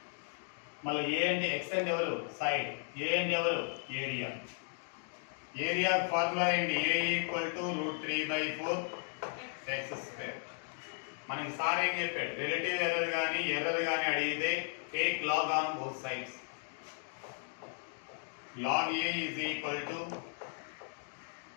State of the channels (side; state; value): right; silent; 54 dB below the other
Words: మళ్ళీ ఏ అంటే x అంటే ఎవరు? సైడ్. ఏ అంటే ఎవరు? ఏరియా. ఏరియా ఫార్ములా ఏంటి? a equal to root 3 by 4 x square. మనకి సార్ ఏం చెప్పాడు? రిలేటివ్ ఎర్రర్ కానీ అడిగితే take log on both sides. Log a is equal to